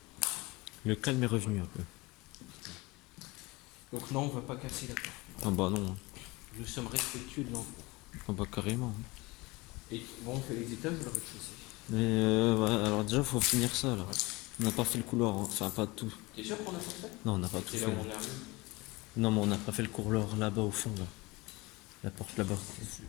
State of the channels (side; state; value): right; quieter; 23.3 dB